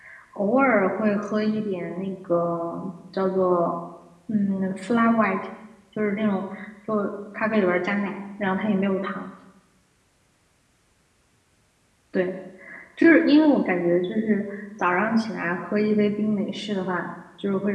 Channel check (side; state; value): both; identical; correlation 1.00